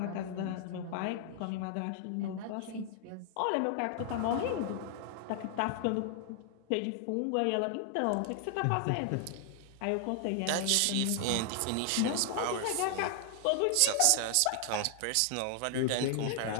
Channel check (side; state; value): both; different; correlation 0.00